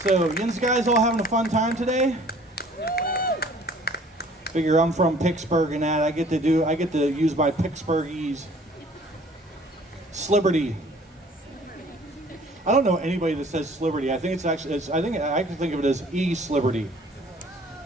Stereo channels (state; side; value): normal; both; correlation 0.53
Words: So, you guys all having a fun time today? Figure I'm from Pittsburgh and that I get to use my Pittsburghese Sliberty. I don't know anybody that says Sliberty. I think it's actually I can think of it as E-Sliberty.